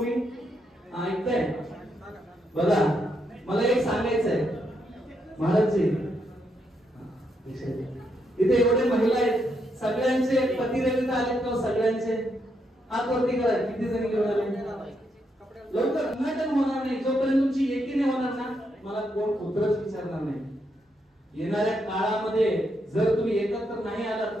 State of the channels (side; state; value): both; normal; correlation 0.79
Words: ऐकताय? बघा मला एक सांगायचं आहे महाराजजी, इथे एवढे महिला आहेत सगळ्यांचे पती रविता आलेत का? सगळ्यांचे हात वरती करा. किती जणी घेऊन आले? लवकर नाटक होणार नाही जोपर्यंत तुमची एकी नाही होणार ना मला कोण पुत्रच विचारणार नाही. येणाऱ्या काळामध्ये जर तुम्ही एकत्र नाही आलात